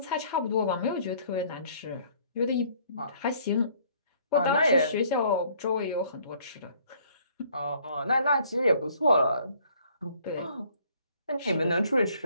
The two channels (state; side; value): inverted; both; correlation -0.61